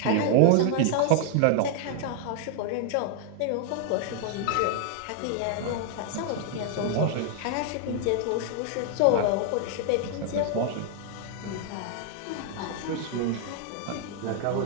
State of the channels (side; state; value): both; different; correlation 0.00